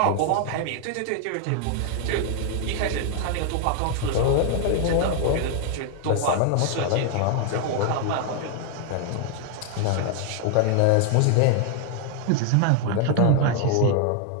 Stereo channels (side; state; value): both; different; correlation 0.00